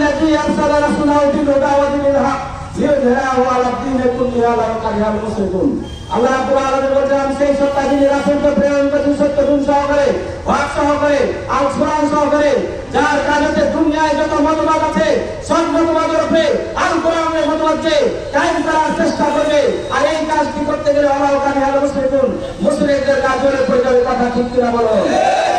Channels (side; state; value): both; identical; correlation 1.00